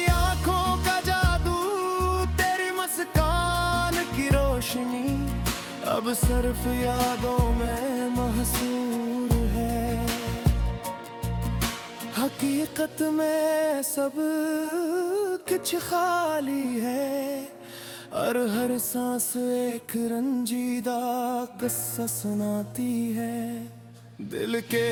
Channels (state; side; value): identical; both; correlation 1.00